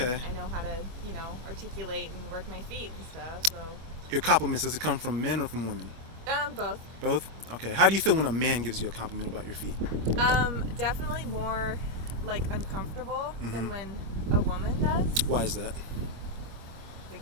I know how to, articulate and work my feet and stuff. So. Your compliments, does it come from men or from women? Both. Both? Okay. How do you feel when a man gives you a compliment about your feet? Definitely more like uncomfortable than when a woman does. Why is that?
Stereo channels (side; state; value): left; late; 25 ms